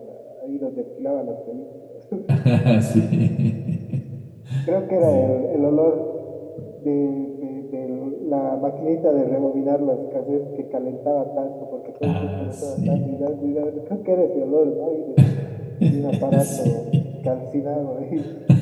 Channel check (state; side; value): identical; both; correlation 1.00